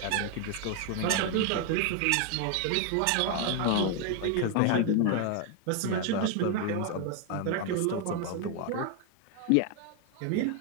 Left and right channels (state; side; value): different; both; correlation 0.01